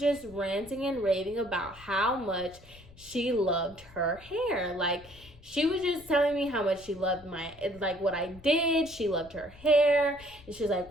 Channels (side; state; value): left; noise; rumble, 22 dB below the sound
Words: just ranting and raving about how much she loved her hair. Like, she was just telling me how much she loved what I did. She loved her hair. And she was